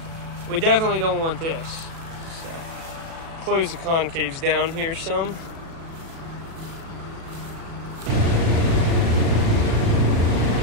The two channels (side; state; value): left; late; 36 ms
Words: we definitely don't want this. So, close the concaves down here some.